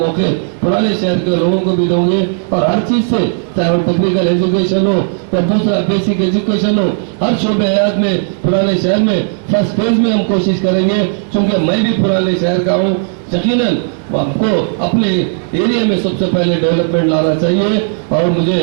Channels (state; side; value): silent; left; digital silence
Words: पुराने शहर के लोगों को भी देंगे। और हर चीज से, चाहे वो टेक्निकल एजुकेशन हो या दूसरा बेसिक एजुकेशन हो, हर शोबे हयात में पुराने शहर में फर्स्ट फेज में हम कोशिश करेंगे। क्योंकि मैं भी पुराने शहर का हूँ, यकीनन आपको अपने एरिया में सबसे पहले डेवलपमेंट लाना चाहिए। और मुझे